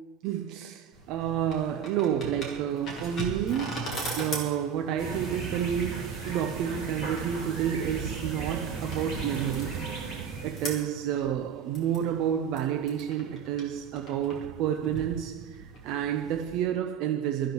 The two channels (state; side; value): quieter; left; 8.0 dB